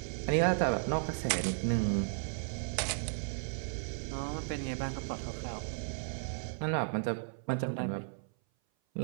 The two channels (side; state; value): left; silent; 55 dB below the other